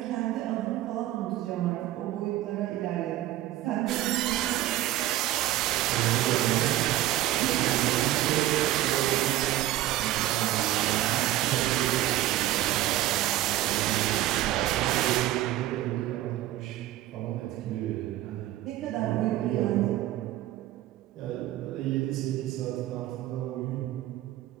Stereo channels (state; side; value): quieter; left; 14.8 dB